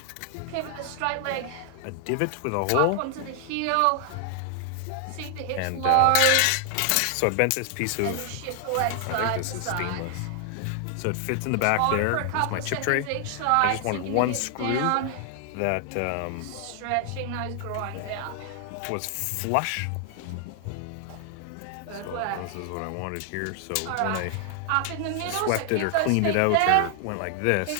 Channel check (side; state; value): both; different; correlation 0.00